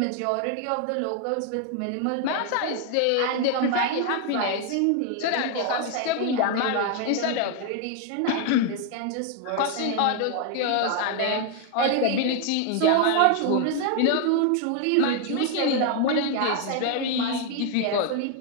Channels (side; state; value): both; different; correlation 0.00